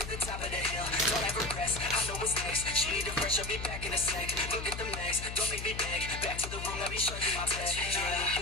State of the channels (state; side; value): noise; left; hum, 8 dB below the sound